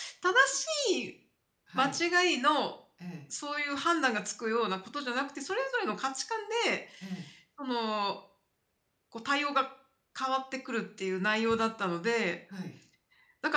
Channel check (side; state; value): both; identical; correlation 1.00